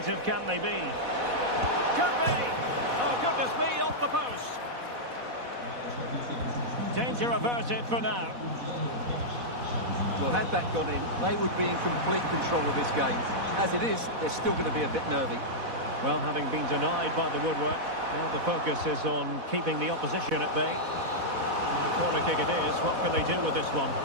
can they be? Could be. Oh, goodness me, off the post. Danger averted for now. Well, had that gone in, they would be in complete control of this game. As it is, they're still going to be a bit nervy. Well, having been denied by the woodwork, now the focus is on keeping the opposition at bay. And the corner kick it is. What can they do with this one?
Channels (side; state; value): left; late; 4.1 ms